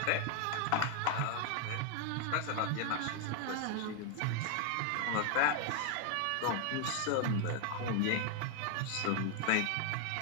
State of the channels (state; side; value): different; both; correlation 0.01